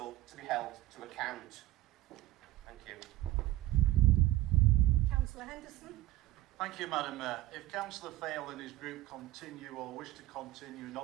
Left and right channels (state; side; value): quieter; left; 16.1 dB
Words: to be held to account. Thank you. Councillor Henderson. Thank you, Madam Mayor. If Councillor Fail and his group continue or wish to continue